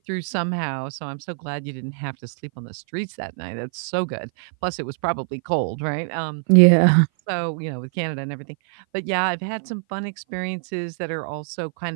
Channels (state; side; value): silent; left; 57 dB below the other